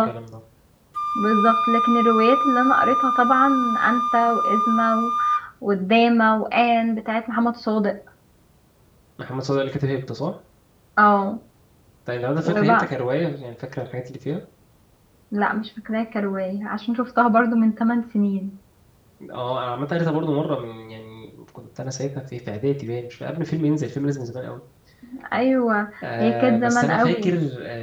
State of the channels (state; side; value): identical; both; correlation 1.00